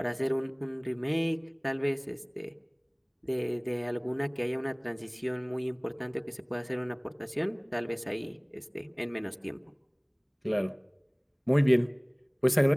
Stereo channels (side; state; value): both; identical; correlation 1.00